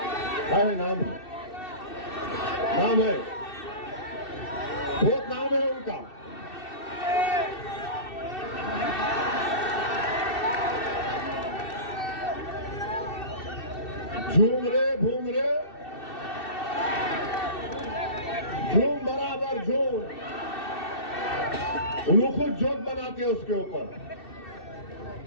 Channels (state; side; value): late; right; 2.7 ms